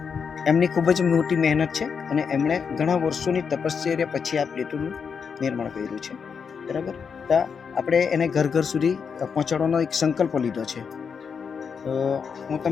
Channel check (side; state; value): right; quieter; 6.3 dB